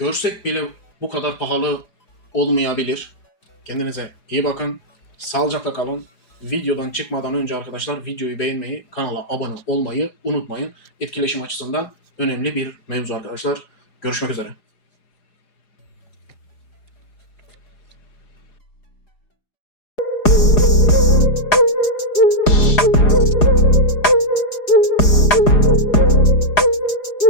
bile bu kadar pahalı olmayabilir. Kendinize iyi bakın. Sağlıcakla kalın. Videodan çıkmadan önce arkadaşlar videoyu beğenmeyi, kanala abone olmayı unutmayın. Etkileşim açısından önemli bir mevzu arkadaşlar. Görüşmek üzere.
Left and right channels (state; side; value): late; right; 4.9 ms